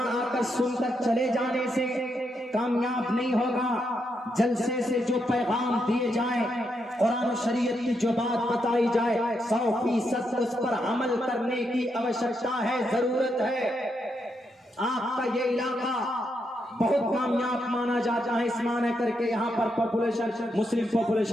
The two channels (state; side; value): normal; both; correlation 0.81